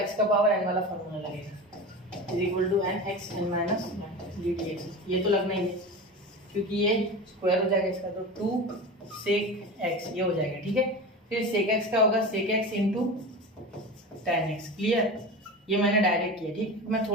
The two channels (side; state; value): both; normal; correlation 0.29